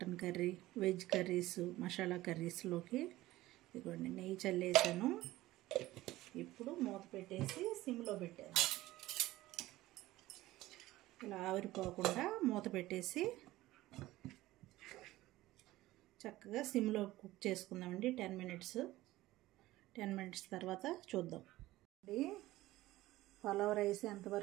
curry, veg curries, masala కర్రీస్లోకి. ఇదిగోండి నెయ్యి చల్లేసాను. ఇప్పుడు మూత పెట్టేసి సిమ్లో పెట్టాను. ఇలా ఆవిరిపోకుండా మూత పెట్టేసి చక్కగా సిమ్లో కుక్ చేసుకుందామండి 10 మినిట్స్. 10 మినిట్స్ తర్వాత చూద్దాం. పలావ్ రైస్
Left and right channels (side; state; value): left; quieter; 17.0 dB